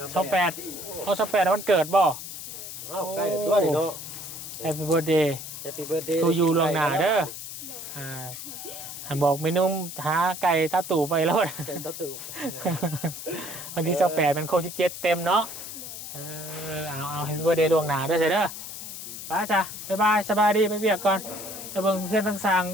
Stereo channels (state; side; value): noise; left; hiss, 10 dB below the sound